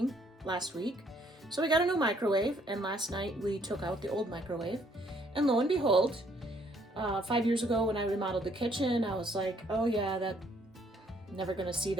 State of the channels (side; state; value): both; normal; correlation 0.65